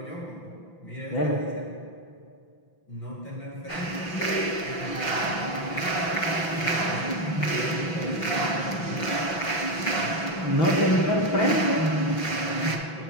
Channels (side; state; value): right; late; 6.0 ms